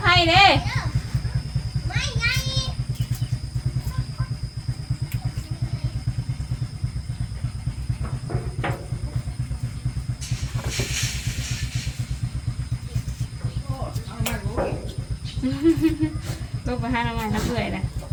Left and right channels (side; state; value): both; identical; correlation 1.00